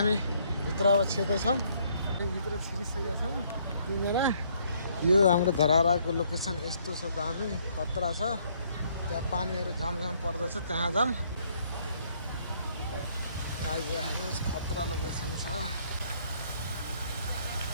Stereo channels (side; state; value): both; inverted; correlation -0.66